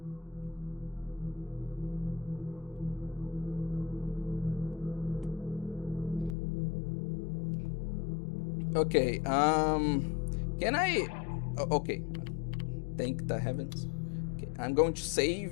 Okay, can I... okay, thank the heavens. Okay, I'm going to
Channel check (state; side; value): drops out; right; at 6.4 s